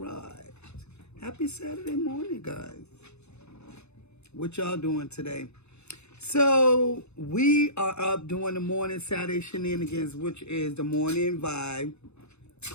Happy Saturday morning, guys. What y'all doing today? So, we are up doing the morning Saturday shenanigans, which is the morning vibe,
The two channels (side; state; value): right; late; 0.81 ms